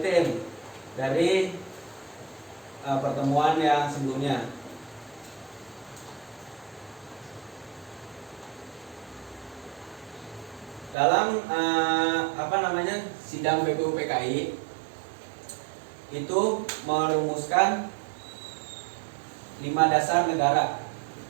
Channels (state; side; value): drops out; left; at 11.0 s